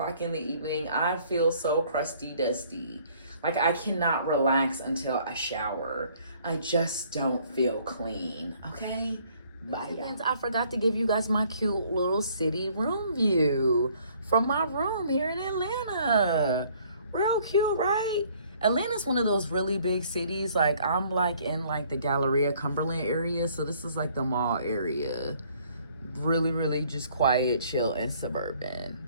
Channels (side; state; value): both; inverted; correlation -0.60